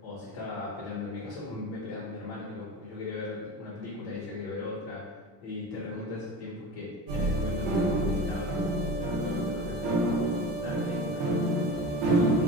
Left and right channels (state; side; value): normal; both; correlation 0.32